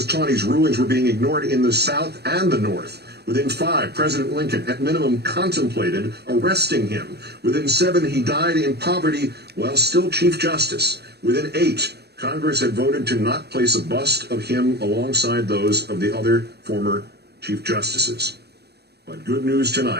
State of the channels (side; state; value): left; late; 0.47 ms